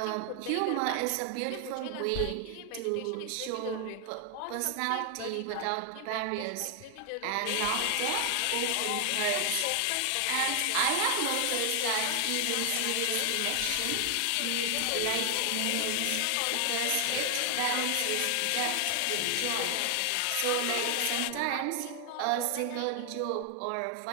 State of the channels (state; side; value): different; both; correlation 0.00